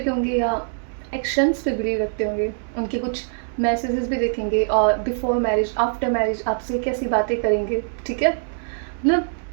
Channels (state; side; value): silent; left; digital silence